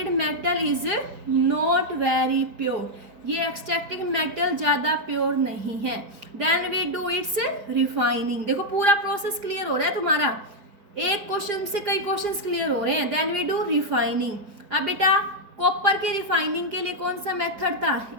metal is not very pure. ये एक्सट्रैक्टेड मेटल ज़्यादा प्योर नहीं है। Then we do its refining. देखो पूरा प्रोसेस क्लियर हो रहा है तुम्हारा, एक क्वेश्चन से कई क्वेश्चंस क्लियर हो रहे हैं। Then we do refining. अब बेटा कॉपर की रिफाइनिंग के लिए कौन सा मेथड था?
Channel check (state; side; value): late; left; 4.9 ms